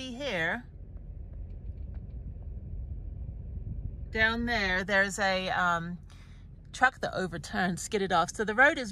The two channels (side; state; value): both; identical; correlation 1.00